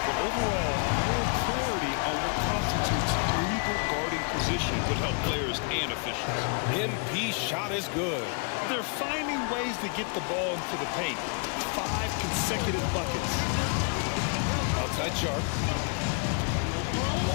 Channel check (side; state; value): right; quieter; 39.5 dB